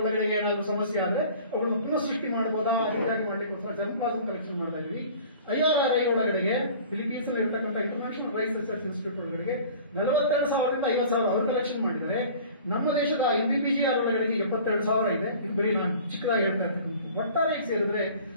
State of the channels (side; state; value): both; inverted; correlation -0.45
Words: ಏನಾದ್ರು ಸಮಸ್ಯೆ ಆದ್ರೆ ಅವುಗಳನ್ನು ಪುನಃ ಸೃಷ್ಟಿ ಮಾಡಬಹುದಾ, ರೀತಿಯಾಗಿ ಮಾಡ್ಲಿಕ್ಕೋಸ್ಕರ ಜರ್ಮ್ ಪ್ಲಾಸಮ್ ಕಲೆಕ್ಷನ್ ಮಾಡ್ತಾ ಇದೀವಿ. IRRI ಒಳಗಡೆಗೆ ಫಿಲಿಪೀನ್ಸ್ ಅಲ್ಲಿ ಇರತಕ್ಕಂಥ ಇಂಟರ್ನ್ಯಾಷನಲ್ ರೈಸ್ ರಿಸರ್ಚ್ ಇನ್ಸ್ಟಿಟ್ಯೂಟ್ ಒಳಗಡೆಗೆ 42,000ದಿಂದ 50,000 ಅವರು ಕಲೆಕ್ಷನ್ ಮಾಡಿದ್ದಾರೆ. ನಮ್ಮ ದೇಶದ MBBGR ಒಳಗಡೆಗೆ 72,000 ಇದೆ. ಇದು ಬರೀ ನಾನು ಚಿಕ್ಕದಾಗಿ ಹೇಳ್ತಾ ಇರ್ತಕ್ಕಂಥ. ಒಟ್ಟಾರೆ ಸೇರಿದ್ರೆ